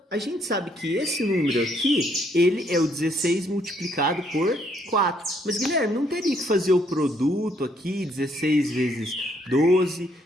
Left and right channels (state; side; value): normal; both; correlation 0.69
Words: a gente sabe que esse número aqui, ele é o 16 multiplicado por 4. Mas, Guilherme, não teria que fazer o produto aqui, 16 vezes 12...